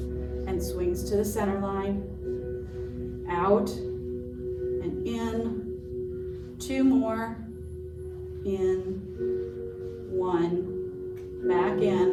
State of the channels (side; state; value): both; identical; correlation 1.00